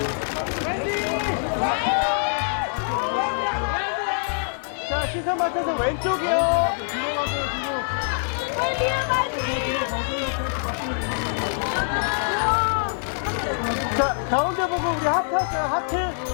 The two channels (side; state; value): right; silent; digital silence